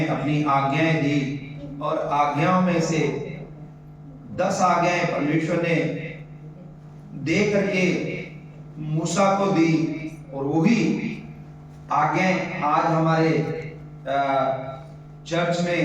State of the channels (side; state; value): both; identical; correlation 1.00